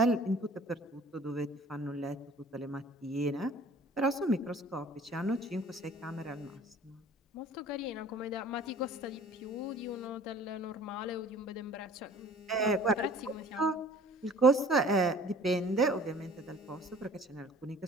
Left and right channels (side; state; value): both; normal; correlation 0.49